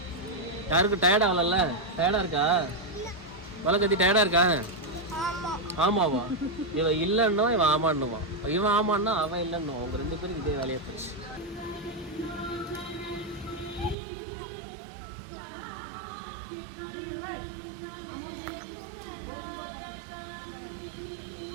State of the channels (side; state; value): left; drops out; at 14.0 s